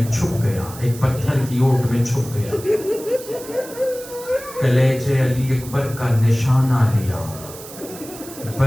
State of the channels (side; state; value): right; noise; hiss, 15 dB below the sound